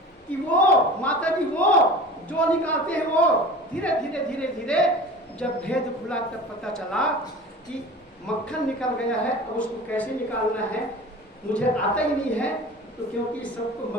कि वो माता जी वो जो निकालते हैं वो धीरे धीरे धीरे धीरे जब भेद खुला तब पता चला कि मक्खन निकल गया है। अब उसको कैसे निकालना है मुझे आता ही नहीं है, तो क्योंकि सबको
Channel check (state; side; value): normal; both; correlation 0.37